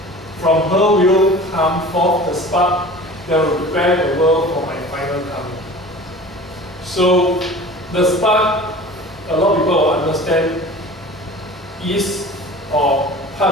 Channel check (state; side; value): normal; both; correlation 0.40